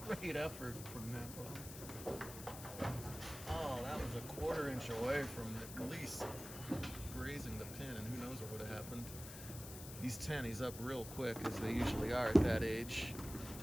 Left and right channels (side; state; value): left; noise; hiss, 11 dB below the sound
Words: great effort from Namvong. Oh, that was a 1/4 inch away from at least grazing the pin, and who knows what would have happened. He's 10, he's up real quick, as they usually are at that age.